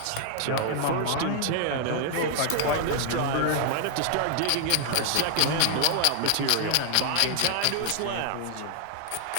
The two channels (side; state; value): both; different; correlation 0.00